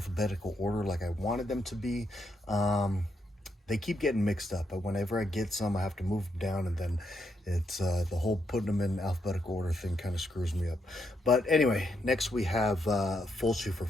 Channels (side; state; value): both; normal; correlation 0.79